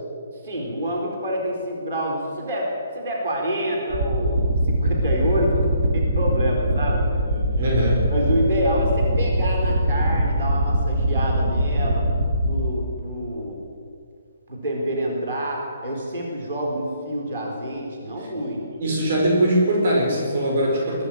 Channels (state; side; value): inverted; both; correlation -0.67